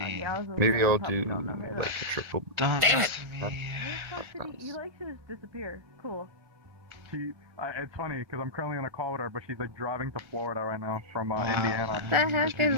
Maybe I'll do like a triple. Damn it! You like to just disappear. Cool. It's funny because I'm currently on a call with her, but she's like driving to Florida right now from Indiana. What the heck is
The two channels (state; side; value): late; left; 1.5 ms